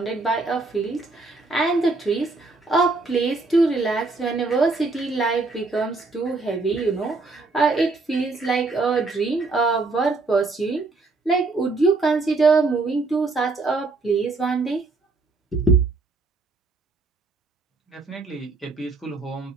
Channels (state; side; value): quieter; left; 3.7 dB